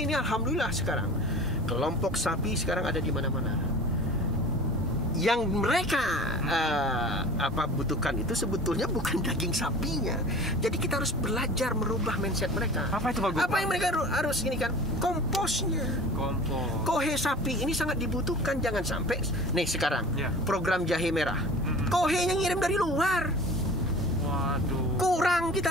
ini alhamdulillah sekarang kelompok sapi sekarang ada di mana-mana. Yang mereka butuhkan itu sebetulnya bukan daging sapinya. Jadi kita harus belajar merubah mindset mereka. Apa itu Pak Gubernur? Apa yang mereka harus ini kan? Komposnya. Kohe sapi ini sangat dibutuhkan. Jangan sampai nih sekarang program jahe merah. Kohe yang ngirim dari luar. Waduh. Kurang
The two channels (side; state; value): both; normal; correlation 0.39